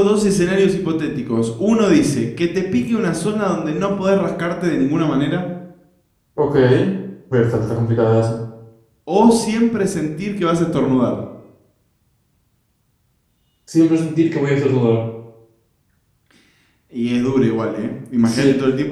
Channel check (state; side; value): identical; both; correlation 1.00